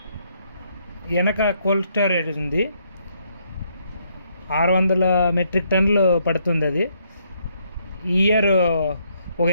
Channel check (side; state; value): both; inverted; correlation -0.72